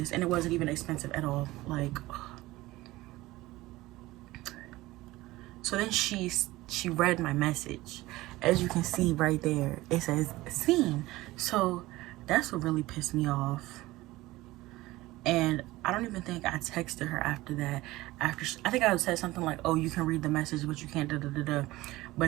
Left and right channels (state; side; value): quieter; left; 18.5 dB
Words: and it wasn't even expensive at all. Like, so then she read my message. As you can see right there, it says seen. So that's what really pissed me off. And I don't even think I texted her after that. I think I said something like, oh, you can read the message, but you can't da da da da.